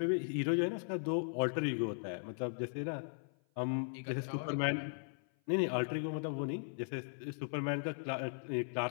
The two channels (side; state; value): right; silent; 53 dB below the other